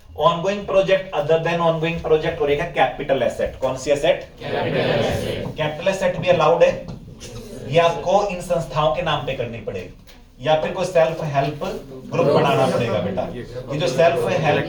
Ongoing project other than ongoing project और एक है कैपिटल एसेट। कौन सी एसेट? कैपिटल एसेट भी अलाउड है। ये आपको इन संस्थाओं के नाम पे करनी पड़ेगी या फिर कोई सेल्फ हेल्प ग्रुप बनाना पड़ेगा बेटा। ये जो सेल्फ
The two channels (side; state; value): both; identical; correlation 1.00